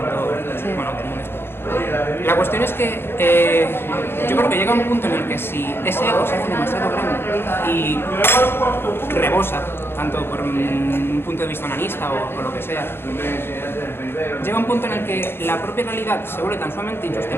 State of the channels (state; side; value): late; right; 0.11 ms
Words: exterior. La cuestión es que yo creo que llega un punto en el que si ese ego se hace demasiado grande y rebosa, tanto por un punto de vista onanista o por lo que sea, llega un punto en el que la propia realidad se vuelve tan sumamente